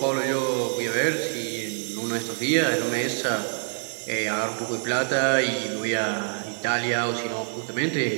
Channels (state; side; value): silent; left; 61 dB below the other